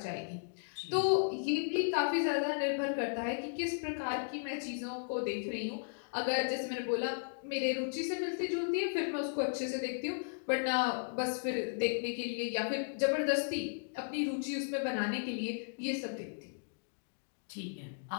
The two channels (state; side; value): silent; right; digital silence